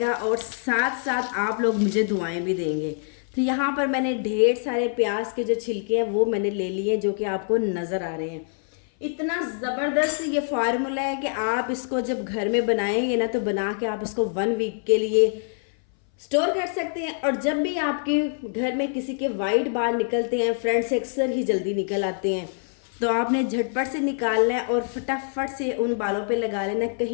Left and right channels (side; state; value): right; silent; 59 dB below the other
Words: और साथ साथ आप लोग मुझे दुआएं भी देंगे। तो यहाँ पर मैंने ढेर सारे प्याज के जो छिलके हैं वो मैंने ले लिए जो कि आपको नज़र आ रहे हैं। इतना ज़बरदस्त ये फार्मूला है कि आप इसको जब घर में बनाएंगे ना तो बना के आप इसको 1 वीक के लिए स्टोर कर सकते हैं। और जब भी आपके घर में किसी के वाइट बाल निकलते हैं, फ्रंट से अक्सर ही जल्दी निकल आते हैं, तो आपने झटपट से निकालना है और फटाफट से उन बालों पे लगा लेना है।